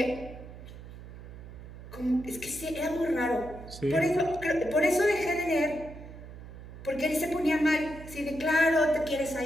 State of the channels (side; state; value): right; noise; hum, 14 dB below the sound